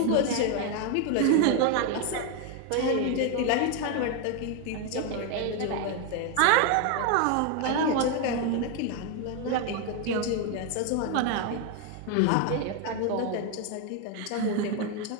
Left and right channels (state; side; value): different; both; correlation 0.01